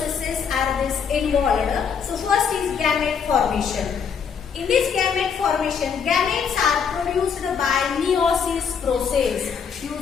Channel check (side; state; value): right; quieter; 6.7 dB